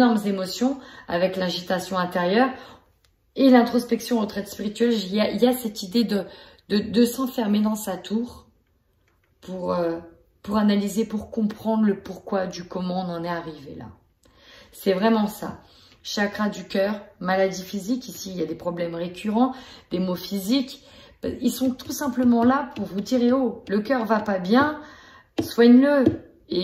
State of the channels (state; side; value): identical; both; correlation 1.00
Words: émotions avec l'agitation intérieure et l'introspection, retraite spirituelle. Il y a cette idée de s'enfermer dans sa tour pour analyser, pour comprendre le pourquoi du comment on en est arrivé là. C'est vraiment ça. Chakra du cœur, maladie physique, ici il y a des problèmes récurrents, des maux physiques. Ils sont tout simplement là pour vous dire, oh, le cœur va pas bien, soigne-le.